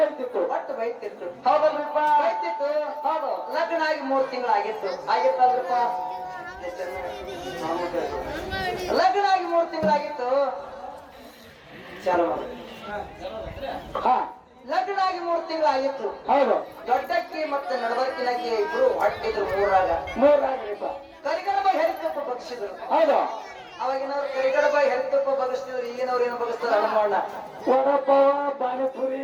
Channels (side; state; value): both; identical; correlation 1.00